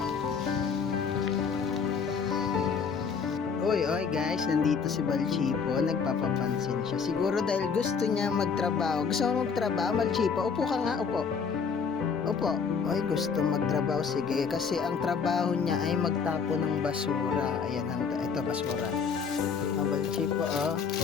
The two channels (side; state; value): right; quieter; 5.9 dB